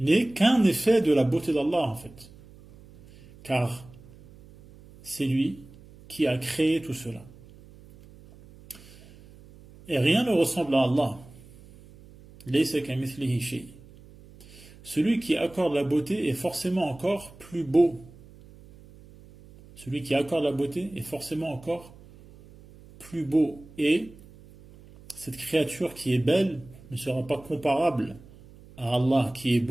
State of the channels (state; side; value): noise; right; hum, 22 dB below the sound